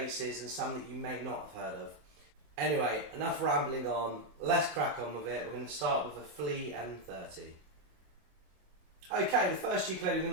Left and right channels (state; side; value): late; left; 27 ms